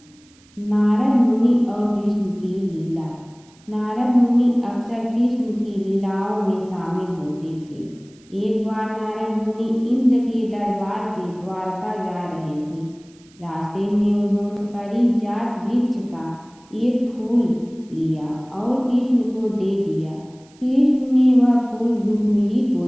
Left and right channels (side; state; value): right; noise; hiss, 29 dB below the sound